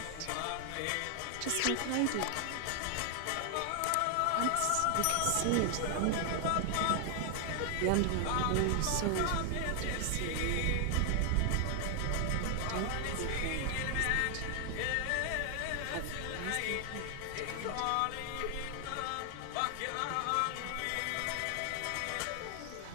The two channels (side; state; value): both; different; correlation 0.00